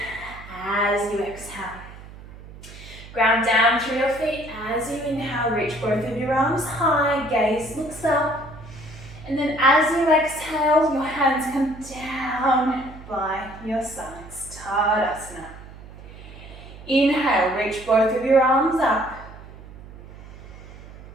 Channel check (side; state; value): right; noise; hum, 17 dB below the sound